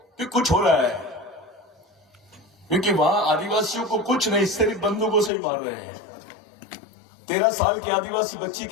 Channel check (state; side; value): drops out; right; at 5.3 s